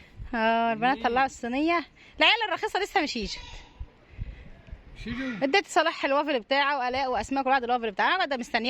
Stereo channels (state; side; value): identical; both; correlation 1.00